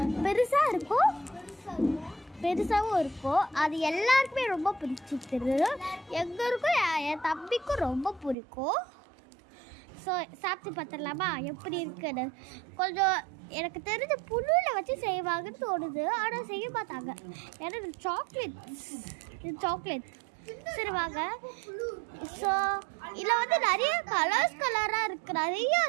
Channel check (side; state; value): left; drops out; at 8.3 s